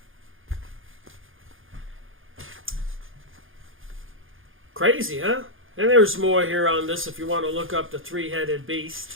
Crazy, huh? And there's more here on this if you want to look up the three-headed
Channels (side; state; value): left; late; 0.59 ms